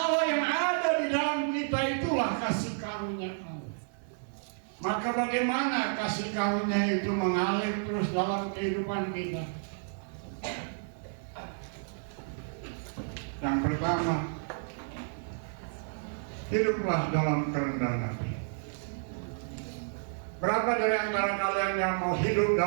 yang ada di dalam kita, itulah kasih karunia Allah. Maka bagaimana kasih karunia itu mengalir terus dalam kehidupan kita? Yang pertama, hiduplah dalam kerendahan hati. Berapa dari antara kalian yang mau hidup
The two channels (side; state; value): left; silent; 57 dB below the other